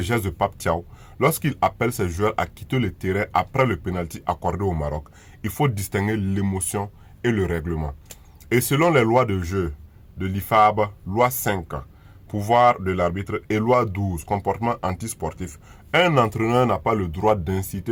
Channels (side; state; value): both; identical; correlation 1.00